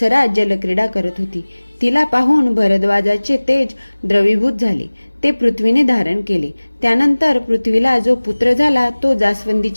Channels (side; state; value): both; inverted; correlation -1.00